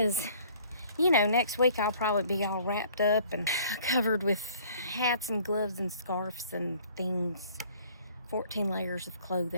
you know, next week I'll probably be all wrapped up and covered with hats and gloves and scarves and things. 14 layers of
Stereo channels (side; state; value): both; inverted; correlation -0.55